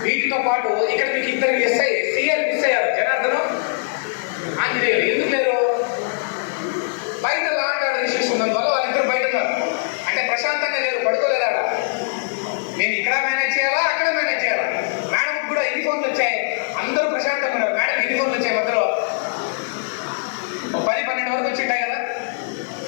వీటితో పాటు ఇక్కడ మీకు ఇద్దరు సీఎల్ మిస్ అయ్యారు, జనార్దనం, ఆంజనేయులు. ఎందుకు లేరు? బయట లాంటి ఇష్యూస్ ఉన్నందువల్ల వాళ్ళిద్దరు బయట ఉన్నారు. అంటే ప్రశాంతంగా లేరు, పడుకోలేదా? మేము ఇక్కడ మేనేజ్ చేయాలా, అక్కడ మేనేజ్ చేయాలా? మేడంకి కూడా యూనిఫామ్లు వచ్చాయి, అందరూ ప్రశాంతంగా ఉన్నారు. మేడం యూనిఫామ్లు వచ్చాయి, మధ్యలో 10-12 వరకు వచ్చి ఉంటాయి కదా.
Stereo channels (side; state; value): right; silent; digital silence